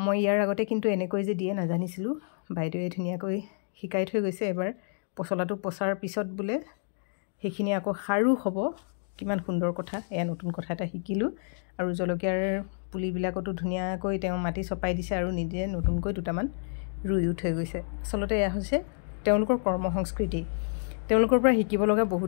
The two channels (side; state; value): right; silent; digital silence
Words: ইয়াৰ আগতে কিন্তু এনেকৈ যে দিয়ে নাজানিছিলো বাইদেৱে ধুনিয়াকৈ শিকাই থৈ গৈছে এবাৰ পছলাটো পছাৰ পিছত বুলে হেখিনি আকৌ খাৰু হ'ব কিমান সুন্দৰ কথা এয়া নতুন কথা এটা শিকিলো আৰু জলকীয়াৰ পুলিবিলাকটো ধুনিয়াকৈ তেওঁ মাটি চপাই দিছে আৰু নিজে নতুনকৈ দুটামান ৰুইও থৈ গৈছে আসলতে এয়া হৈছে তেওঁলোকৰ কৰ্ম সংস্কৃতি তেওঁলোকৰ পৰা শিকিব লগা